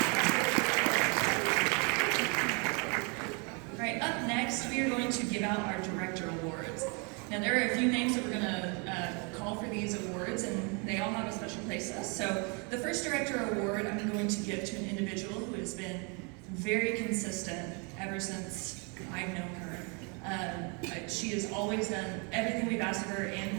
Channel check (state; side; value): quieter; left; 33.7 dB